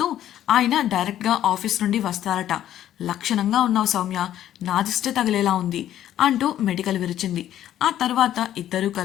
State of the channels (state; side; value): quieter; right; 11.8 dB